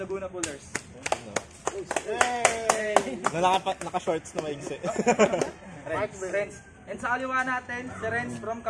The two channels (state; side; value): identical; both; correlation 1.00